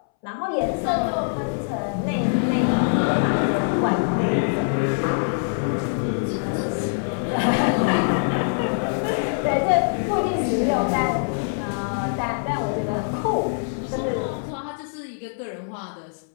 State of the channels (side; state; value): right; silent; 63 dB below the other